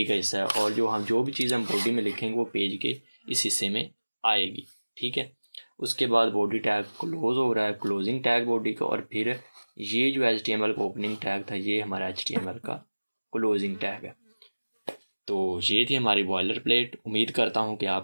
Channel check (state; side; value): inverted; both; correlation -1.00